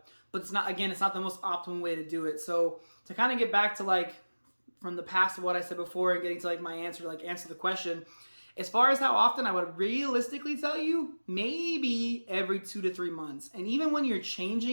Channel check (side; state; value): both; inverted; correlation -1.00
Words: But it's not the most optimal way to do it. So to kind of get back to like from the past of what I said before and getting to like my answer the question, as far as how often, I would realistically tell you maybe every 2 to 3 months. And even when you're